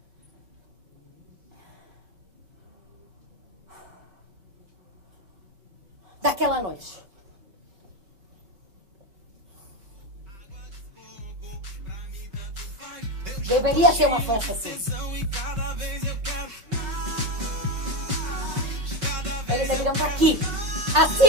Daquela noite. Deveria ser uma festa assim. Eles deveriam estar aqui.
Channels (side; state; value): left; late; 5.1 ms